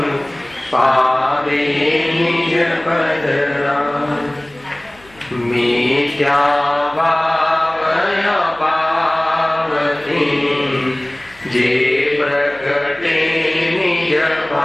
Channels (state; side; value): noise; left; hum, 27 dB below the sound